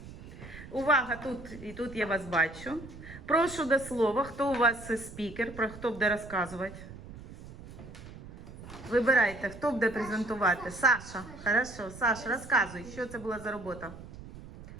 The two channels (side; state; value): right; noise; rumble, 15 dB below the sound